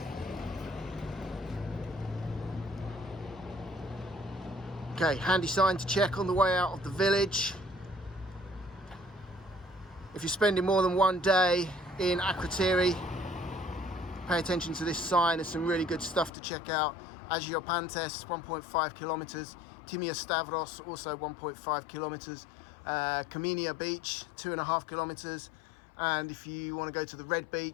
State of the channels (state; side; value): drops out; right; at 16.3 s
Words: Okay, handy sign to check on the way out of the village. If you're spending more than one day in Akrotiri, pay attention to this sign. There's some really good stuff to check out. Agiopantes, 1.5 kilometers. Timia Stavros, also 1.5 kilometers. Kaminia Beach, 2.5 kilometers. And if you want to go to the Red